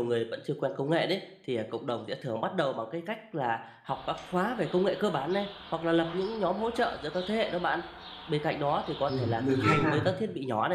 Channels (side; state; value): both; identical; correlation 1.00